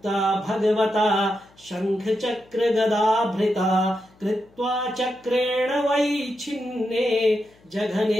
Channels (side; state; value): left; noise; hum, 30 dB below the sound